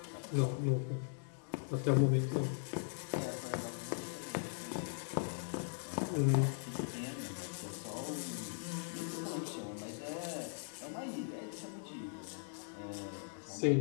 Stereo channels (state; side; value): silent; right; digital silence